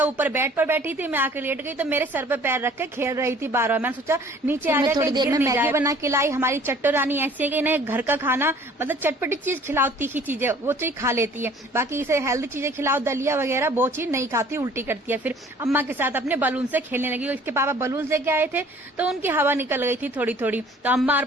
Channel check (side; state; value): both; normal; correlation 0.52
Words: ऊपर बेड पर बैठी थी, मैं आकर लेट गई तो मेरे सर पर पैर रख के खेल रही थी बार बार। मैंने सोचा नीचे आ जाए, थोड़ी देर में मैगी बना के लाई। हमारी चट्टो रानी ऐसी है कि इन्हें घर का खाना मतलब चटपटी चीज खिलाओ, तीखी चीजें वो चीज खा लेती है, बाकी इसे हेल्दी चीजें खिलाओ, दलिया वगैरह वो चीज नहीं खाती, उल्टी करती है। फिर अम्मा के साथ अपने बलून से खेलने लगी। इसके पापा बलून लेके आए थे तो उनकी हवा निकल गई थी थोड़ी थोड़ी, तो अम्मा और